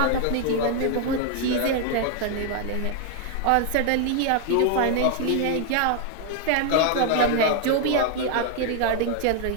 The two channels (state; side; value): different; both; correlation 0.00